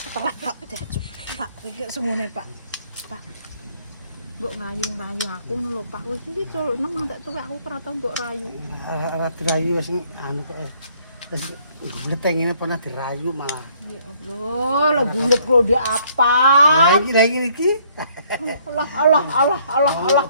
Pak, Pak, kek semune, Pak. Pak. Mbok ngayu-ngayu aku lho, Pak. Wis iki nang tak tuwek aku ora tau mbok rayu. Ora dirayu wis anu kok. Wis ngetengine pernah dirayu malah. Ya Allah, lah bulet kok dia apa? Lagi iki. Allah.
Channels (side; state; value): both; inverted; correlation -0.64